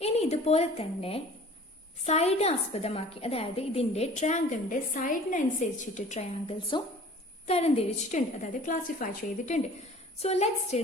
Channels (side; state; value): both; normal; correlation 0.47